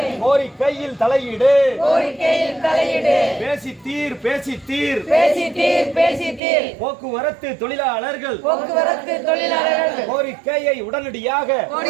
கோரிக்கையில் தலையிடு பேசித்தீர் போக்குவரத்து தொழிலாளர்கள் கோரிக்கையை உடனடியாக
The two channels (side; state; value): left; drops out; at 6.4 s